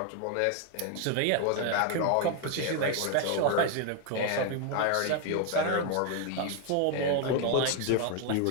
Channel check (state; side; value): different; both; correlation 0.01